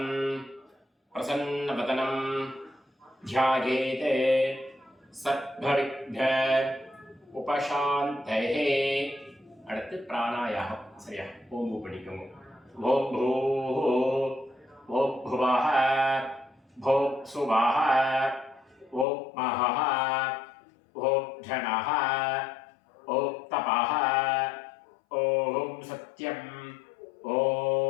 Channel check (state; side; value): drops out; right; at 19.1 s